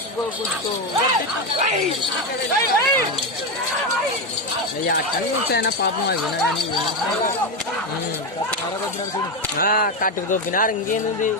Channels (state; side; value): normal; both; correlation 0.11